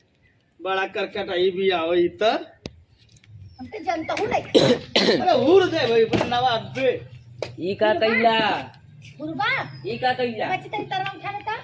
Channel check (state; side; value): identical; both; correlation 1.00